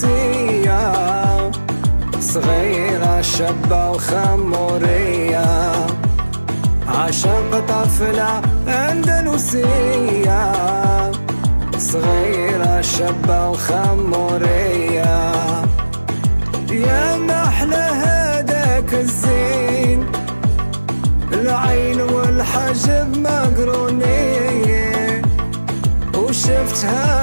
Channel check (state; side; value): inverted; both; correlation -1.00